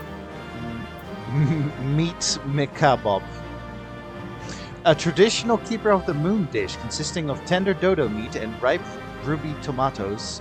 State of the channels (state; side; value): identical; both; correlation 1.00